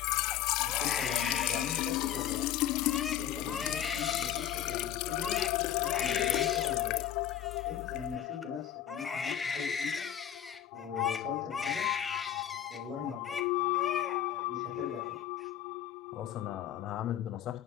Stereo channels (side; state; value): right; quieter; 10.5 dB